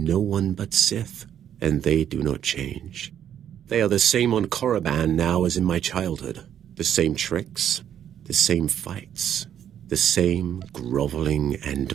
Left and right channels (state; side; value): quieter; left; 9.8 dB